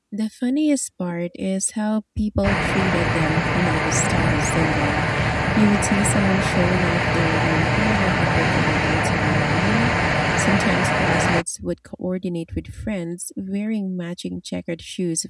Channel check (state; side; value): identical; both; correlation 1.00